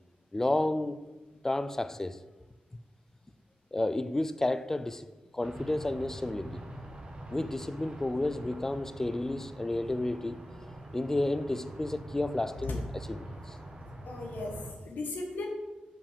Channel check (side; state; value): both; normal; correlation 0.96